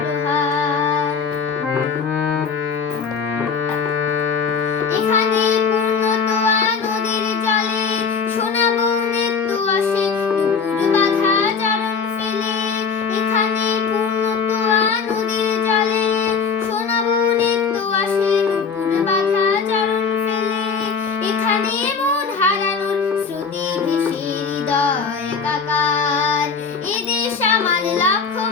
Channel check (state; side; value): quieter; right; 5.6 dB